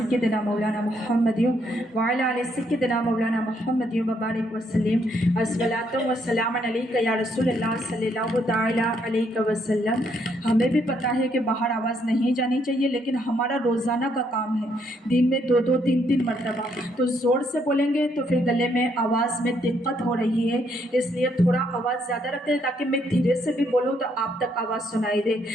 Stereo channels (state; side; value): normal; both; correlation 0.72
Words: मौलाना मुहम्मद व अला आलि सय्यिदिना मौलाना मुहम्मद व बारिक व सल्लिम अस्सलातु व सलामन अलैका या रसूलल्लाह सल्लल्लाहु तआला अलैहि वसल्लम। हमें भी पता है कि बाहर आवाज़ नहीं जानी चाहिए, लेकिन हमारा रोज़ाना का काम है दिन में 2-2 3-3 मरतबा, तो ज़ोर से बोलेंगे तो फिर गले में आवाज़ में दिक्कत हो रही है, इसलिए थोड़ा आवाज़ ज़्यादा रखते हैं ताकि मैं धीरे से भी बोलूँ तो आप तक आवाज़ सुनाई दे,